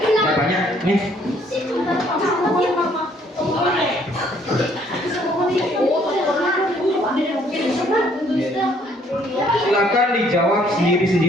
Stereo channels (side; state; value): both; normal; correlation 0.64